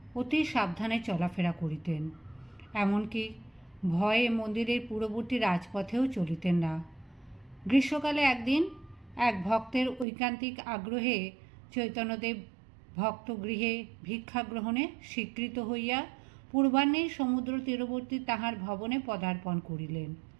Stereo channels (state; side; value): drops out; left; at 10.1 s